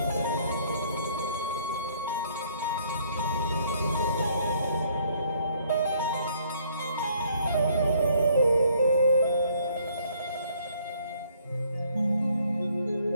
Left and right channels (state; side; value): inverted; both; correlation -0.63